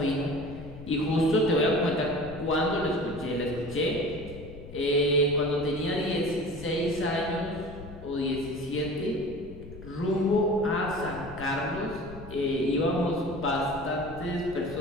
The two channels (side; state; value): left; noise; rumble, 14 dB below the sound